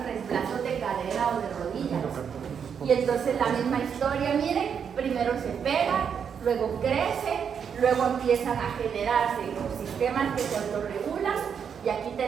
reemplazos de cadera o de rodillas. Y entonces la misma historia, miren, primero se pega, luego crece, luego empiezan a generarse los sistemas que se autorregulan, y aquí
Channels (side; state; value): left; quieter; 7.3 dB